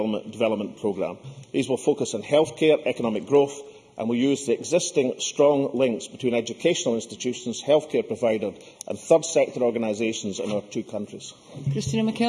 Programme. These will focus on healthcare, economic growth, and will use the existing strong links between educational institutions, healthcare providers and third sector organisations in our two countries. Christina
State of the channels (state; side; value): identical; both; correlation 1.00